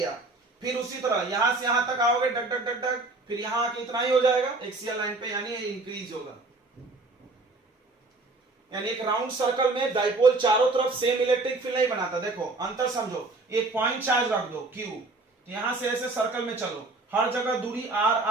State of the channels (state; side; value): quieter; left; 3.2 dB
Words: फिर उसी तरह यहां से यहां तक आओगे, डक डक डक डक, फिर यहां आके इतना ही हो जाएगा एक्सियल लाइन पे, यानी इंक्रीज होगा। यानी एक राउंड सर्कल में डाइपोल चारों तरफ सेम इलेक्ट्रिक फील्ड नहीं बनाता। देखो अंतर समझो, एक पॉइंट चार्ज रख दो Q, तो यहां से ऐसे सर्कल में चलो, हर जगह दूरी R